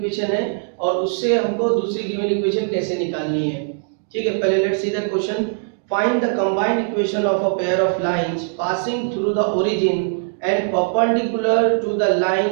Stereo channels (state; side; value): silent; left; digital silence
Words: है और उससे हमको दूसरी गिवन इक्वेशन कैसे निकालनी है। ठीक है, पहले let's see the question. Find the combined equation of a pair of lines passing through the origin and perpendicular to the